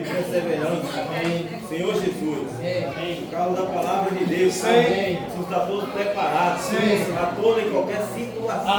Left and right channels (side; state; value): both; identical; correlation 1.00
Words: perseverança. Senhor Jesus, por causa da palavra de Deus. Amém. Você está todos preparados para toda e qualquer situação.